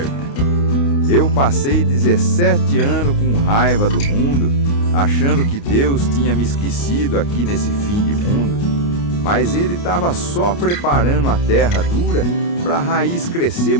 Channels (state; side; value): late; right; 29 ms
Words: Eu passei 17 anos com raiva do mundo, achando que Deus tinha me esquecido aqui nesse fim de mundo. Mas Ele estava só preparando a terra dura para a raiz crescer